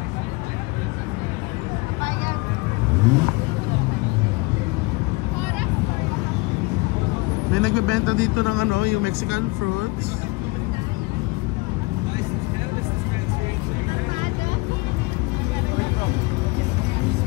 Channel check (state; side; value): quieter; right; 24.8 dB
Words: May nagbebenta dito ng ano, yung Mexican fruits.